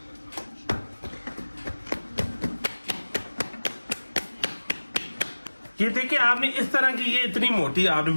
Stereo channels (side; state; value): both; inverted; correlation -1.00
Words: ये देखिए आपने इस तरह की ये इतनी मोटी आपने